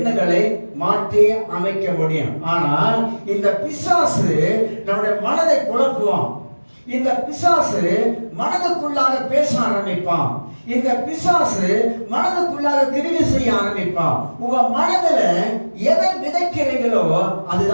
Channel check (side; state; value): both; inverted; correlation -1.00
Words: மாற்றி அமைக்க முடியும். ஆனால் இந்த பிசாசு நம்முடைய மனதை குழப்புவான். இந்த பிசாசு மனதுக்குள்ளாக பேச ஆரம்பிப்பான். இந்த பிசாசு மனதுக்குள்ளாக கிரியை செய்ய ஆரம்பிப்பான். உங்க மனதுல எதை விதைக்கிறீங்களோ